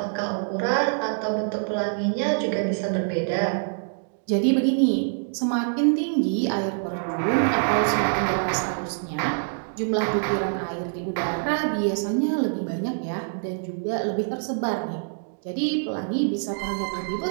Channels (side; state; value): left; silent; digital silence